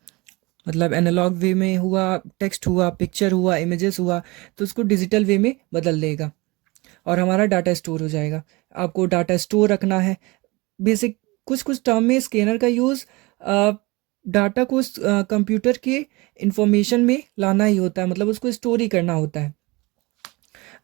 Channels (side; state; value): left; quieter; 23.9 dB